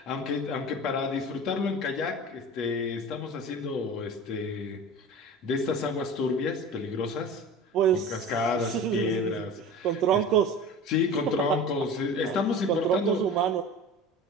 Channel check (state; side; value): normal; both; correlation 0.35